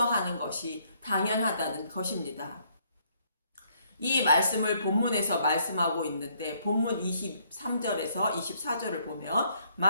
것이 당연하다는 것입니다. 이 말씀을 본문에서 말씀하고 있는데 본문 23절에서 24절을 보면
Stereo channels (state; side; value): inverted; both; correlation -0.69